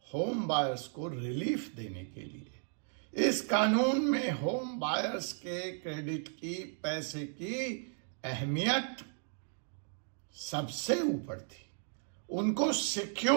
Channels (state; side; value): silent; left; 54 dB below the other